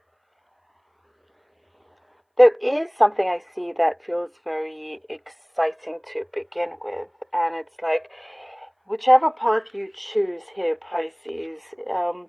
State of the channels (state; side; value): identical; both; correlation 1.00